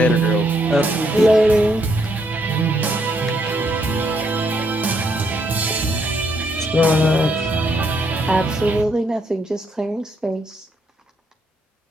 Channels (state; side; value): normal; both; correlation 0.74